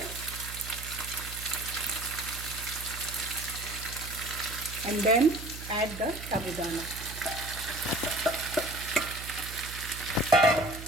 And then add the sabudana.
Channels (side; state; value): right; noise; hum, 11 dB below the sound